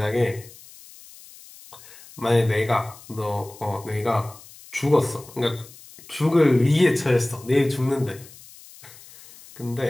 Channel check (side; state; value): left; noise; hiss, 21 dB below the sound